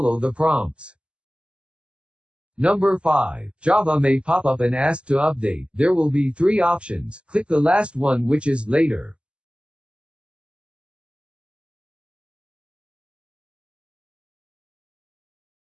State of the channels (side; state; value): left; late; 0.054 ms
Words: the prompts. Number 5. Java may pop up and ask to update. There will be 3 options. Click the last one, which is Later.